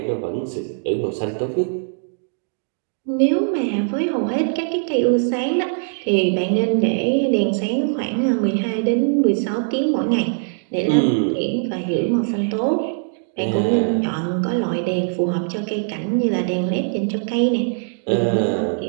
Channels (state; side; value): silent; left; digital silence